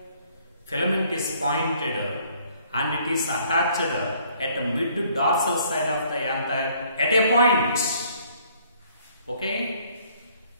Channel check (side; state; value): both; inverted; correlation -0.62